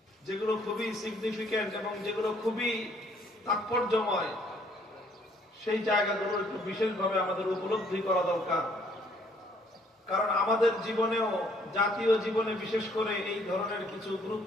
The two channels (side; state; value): both; normal; correlation 0.63